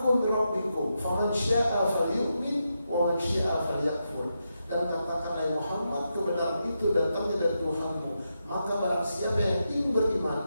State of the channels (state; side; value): inverted; both; correlation -0.86